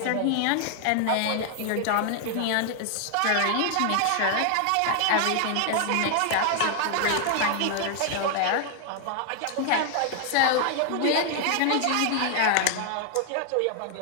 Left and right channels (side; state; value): both; different; correlation 0.00